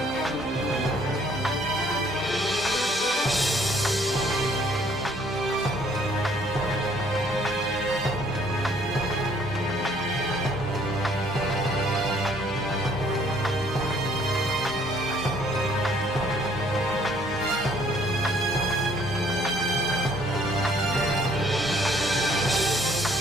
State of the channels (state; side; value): normal; both; correlation 0.61